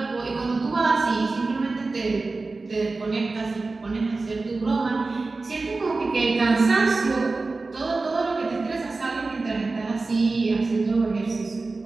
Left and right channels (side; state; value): left; quieter; 3.6 dB